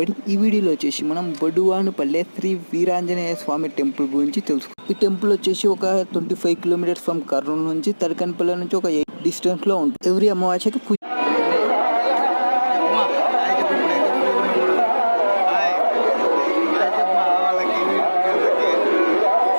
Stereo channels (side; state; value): both; inverted; correlation -1.00